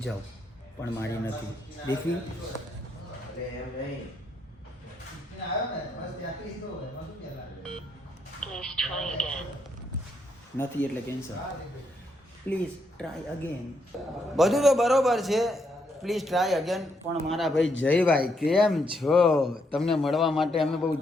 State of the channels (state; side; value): normal; both; correlation 0.76